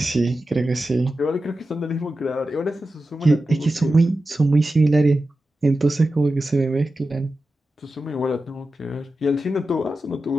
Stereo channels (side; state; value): both; normal; correlation 0.92